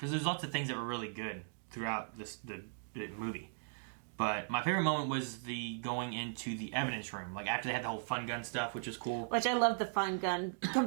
there's lots of things that were really good throughout the movie. But my favorite moment was the going into the evidence room. Like, after they had the whole fun gun stuff, which was cool. Which I love the fun gun.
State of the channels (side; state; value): left; silent; digital silence